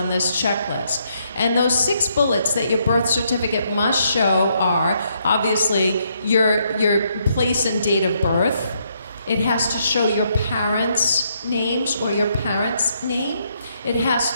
this checklist. And those 6 bullets that your birth certificate must show are, obviously, your place and date of birth. It has to show your parents' names or your parents' name. It has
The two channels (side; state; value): both; inverted; correlation -0.74